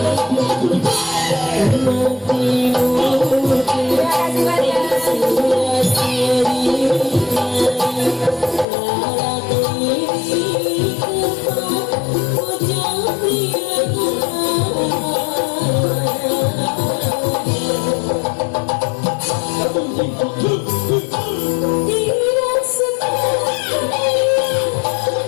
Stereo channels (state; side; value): drops out; right; at 8.7 s